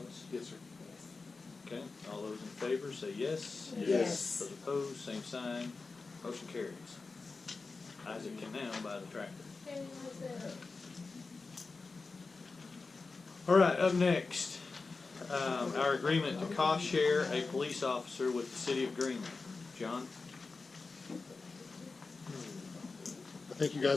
Yes, sir. Okay. All those in favor say yes. Yes. Those opposed, same sign. Motion carries. Isaac can now buy the tractor. All right, up next, our agreement to cost share a police officer with the city of Greenland. John? I think you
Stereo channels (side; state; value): right; quieter; 4.0 dB